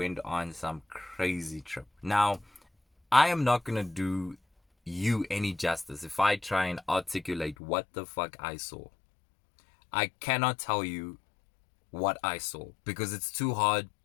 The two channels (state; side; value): drops out; right; at 7.6 s